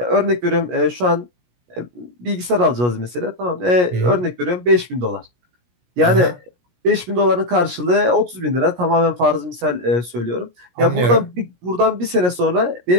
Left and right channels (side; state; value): left; late; 17 ms